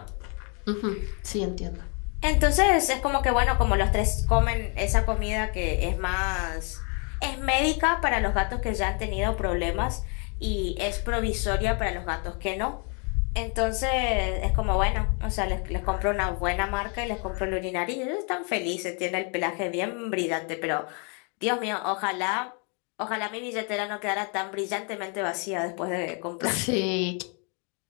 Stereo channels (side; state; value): right; quieter; 37.0 dB